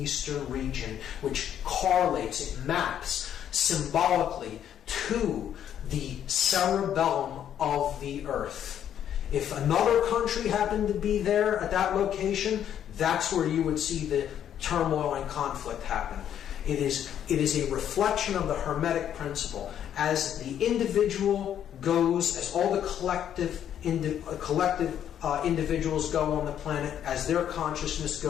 region, which correlates, it maps symbolically to the cerebellum of the Earth. If another country happened to be there at that location, that's where you would see the turmoil and conflict happen. It is a reflection of the Hermetic principle. As the individual goes, as all the collective individuals go on the planet, as their consciousness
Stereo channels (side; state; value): right; quieter; 9.9 dB